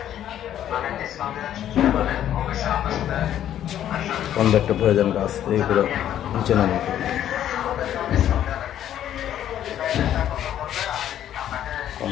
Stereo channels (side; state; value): right; quieter; 11.0 dB